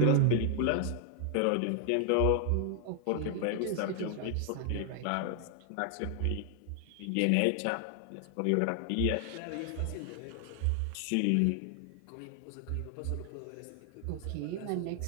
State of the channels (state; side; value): different; both; correlation 0.00